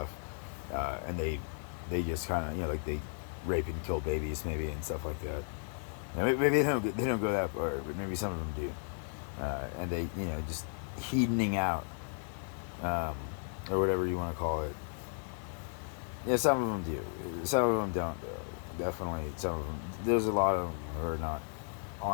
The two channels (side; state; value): right; silent; 55 dB below the other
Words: and they just kind of, like they rape and kill babies maybe and stuff like that. Maybe they don't go that far, but maybe some of them do, and they just hedoning out, or whatever you want to call it. Yeah, some of them do. Some of them don't, though. Definitely, some of them. There's a lot of them who are not